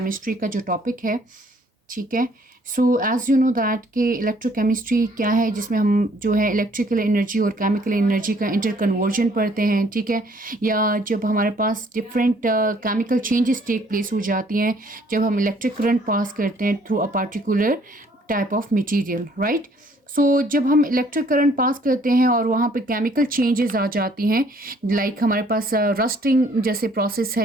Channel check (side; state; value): both; normal; correlation 0.62